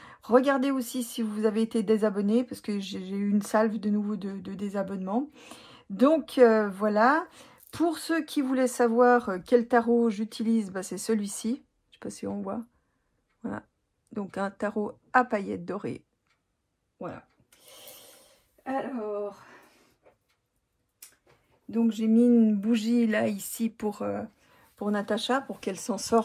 Regardez aussi si vous avez été désabonné, parce que j'ai eu une salve de nouveau de désabonnement. Donc voilà. Pour ceux qui voulaient savoir quel tarot j'utilise, bah, c'est celui-ci. Je ne sais pas si on voit. Voilà. Donc un tarot à paillettes dorées. Voilà. Alors, donc j'ai mis une bougie là, ici, pour Natacha, pour qu'elle s'en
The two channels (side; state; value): both; identical; correlation 1.00